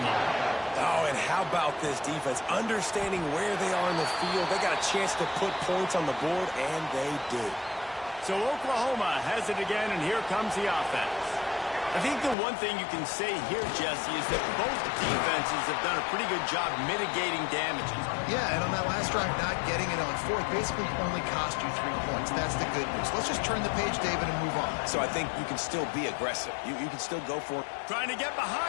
Oh, and how about this defense? Understanding where they are in the field. They got a chance to put points on the board, and they do. So Oklahoma has it again, and here comes the offense. I think the one thing you can say here, Jesse, is that both defenses have done a pretty good job mitigating damages. Yeah, and on that last drive, not getting it on fourth basically only cost you 3 points. That's the good news. Let's just turn the page, David, and move on. So I think you can still be aggressive. You can still go for it. Trying to get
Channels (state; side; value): drops out; right; at 12.4 s